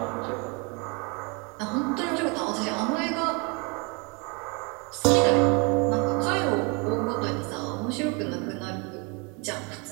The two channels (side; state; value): left; quieter; 31.5 dB